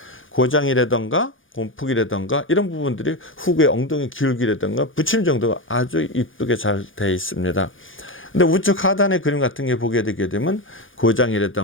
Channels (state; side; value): late; right; 0.58 ms